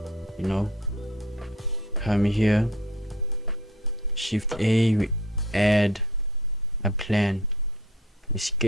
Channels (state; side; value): normal; both; correlation 0.50